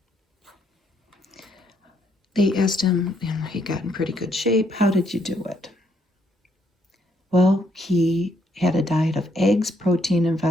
They asked him, and he got in pretty good shape, how did you do it? Well, he had a diet of eggs, protein, and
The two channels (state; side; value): normal; both; correlation 0.71